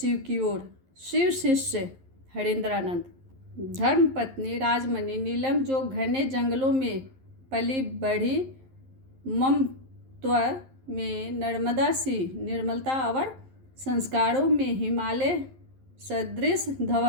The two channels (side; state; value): left; late; 11 ms